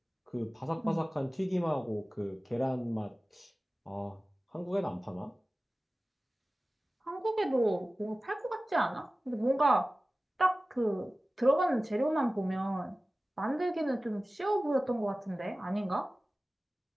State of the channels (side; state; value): both; normal; correlation 0.96